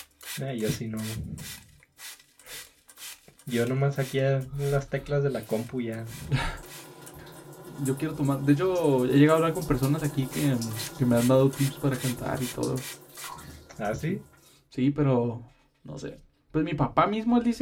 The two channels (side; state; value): both; identical; correlation 1.00